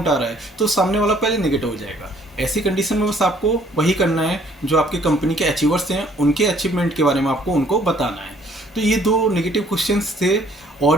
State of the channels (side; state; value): both; normal; correlation 0.61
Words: आ रहा है, तो सामने वाला पहले नेगेटिव हो जाएगा। ऐसी कंडीशन में बस आपको वही करना है, जो आपकी कंपनी के अचीवर्स हैं उनके अचीवमेंट के बारे में आपको उनको बताना है। तो ये 2 नेगेटिव क्वेश्चंस थे,